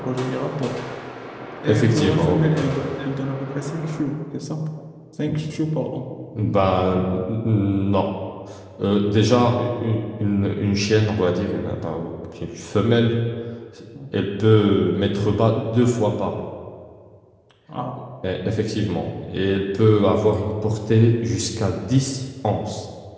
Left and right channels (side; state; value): both; identical; correlation 1.00